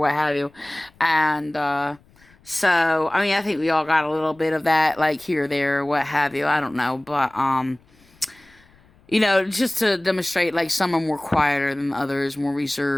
have you, and so I mean, I think we all got a little bit of that, like here, there, what have you. I don't know, but you know, just to demonstrate like some are more quieter than others, more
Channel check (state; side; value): noise; left; rumble, 30 dB below the sound